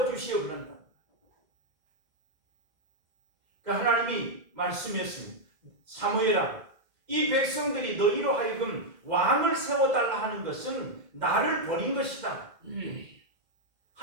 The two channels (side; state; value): left; late; 2.1 ms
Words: 그런다. 그러니까 하나님이 말씀했습니다. 사무엘아, 이 백성들이 너희로 하여금 왕을 세워달라 하는 것은 나를 버린 것이다.